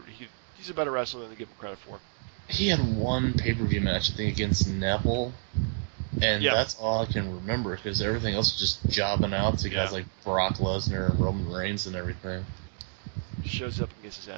he's a better wrestler than they give him credit for. He had one pay-per-view match, I think, against Neville, and that's all I can remember because everything else was just jobbing out to guys like Brock Lesnar and Roman Reigns and everything. Shows up and gets his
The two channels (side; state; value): left; silent; 59 dB below the other